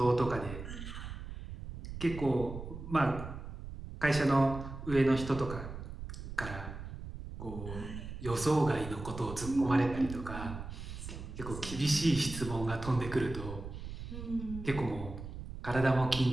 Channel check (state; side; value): noise; right; rumble, 9 dB below the sound